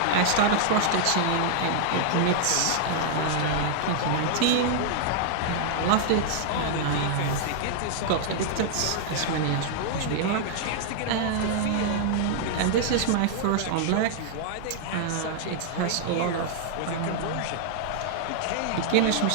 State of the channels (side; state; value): both; different; correlation -0.01